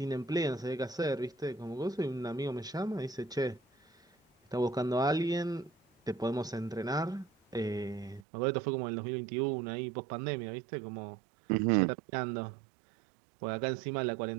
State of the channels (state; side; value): drops out; left; at 8.2 s